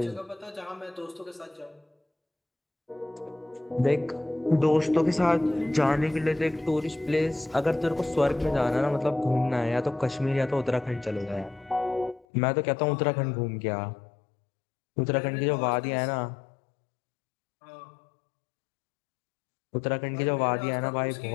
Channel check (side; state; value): right; drops out; at 12.2 s